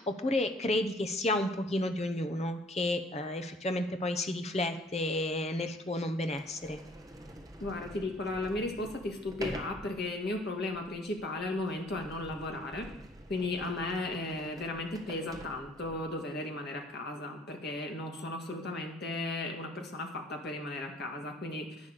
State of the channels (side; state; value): both; normal; correlation 0.56